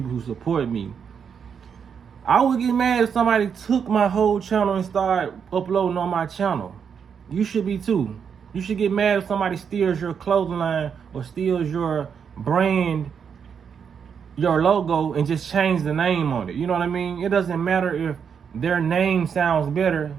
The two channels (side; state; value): left; quieter; 7.0 dB